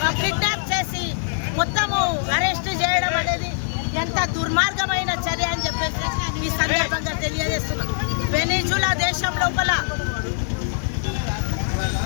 కిడ్నాప్ చేసి మొత్తము అరెస్ట్ చేయడం అనేది ఎంత దుర్మార్గమైన చర్య అని చెప్పేసి ఈ సందర్భంగా తెలియజేస్తున్నాం. వెనిజులా దేశం లోపల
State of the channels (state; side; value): silent; right; 62 dB below the other